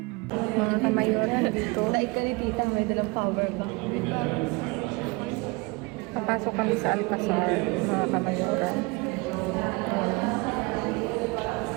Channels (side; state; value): left; quieter; 26.9 dB